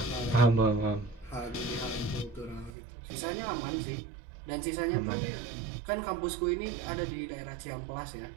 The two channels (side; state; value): left; drops out; at 2.7 s